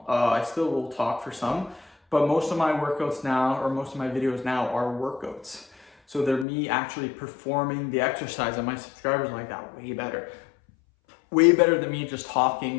I still will talk for some, but most of my workouts now, or most of my videos now are workouts. So they're me actually performing the exercise, and my subscribers like that way better. Way better than me just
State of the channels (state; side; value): drops out; right; at 6.5 s